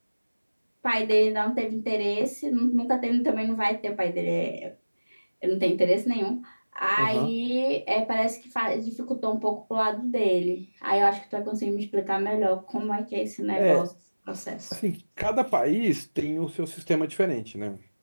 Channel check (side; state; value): both; inverted; correlation -1.00